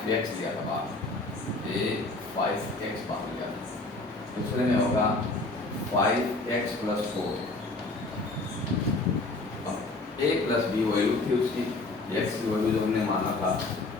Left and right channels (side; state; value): right; quieter; 3.2 dB